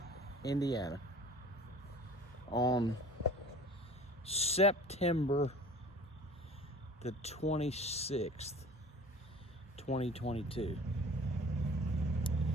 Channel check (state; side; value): normal; both; correlation 0.45